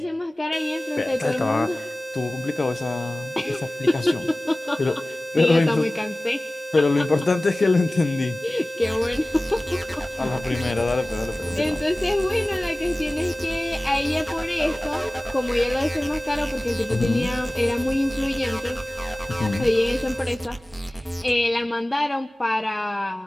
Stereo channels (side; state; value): both; normal; correlation 0.98